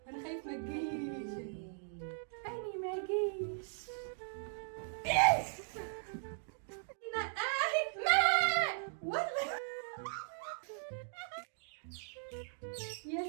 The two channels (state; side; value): silent; left; digital silence